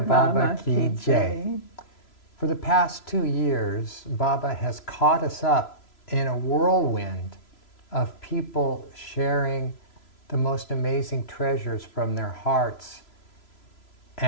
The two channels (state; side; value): late; right; 3.0 ms